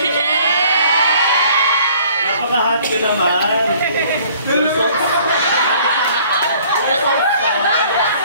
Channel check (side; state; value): both; inverted; correlation -0.56